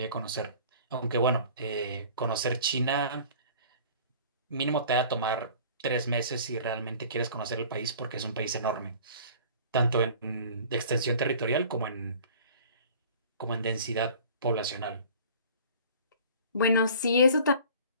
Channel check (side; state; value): both; inverted; correlation -0.46